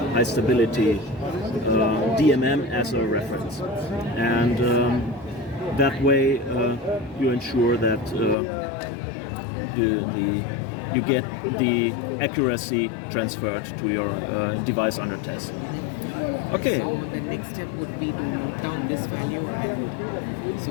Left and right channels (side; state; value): right; drops out; at 8.3 s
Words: high stability DMM as a reference, and that way you ensure that you get the accuracy transferred to your device under test. Okay. So the next step would be to note down this value. So